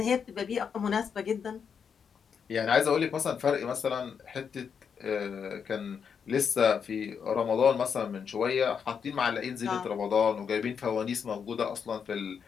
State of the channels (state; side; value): quieter; right; 6.8 dB